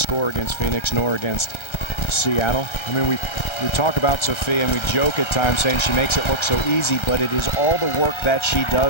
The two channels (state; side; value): late; right; 1.3 ms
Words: against Phoenix nor against Seattle. I mean, we talk about Sophia and we joke at times saying she makes it look so easy, but it is all the work that she